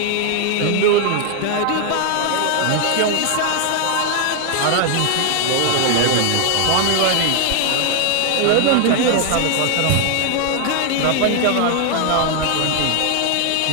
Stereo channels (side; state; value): both; different; correlation 0.00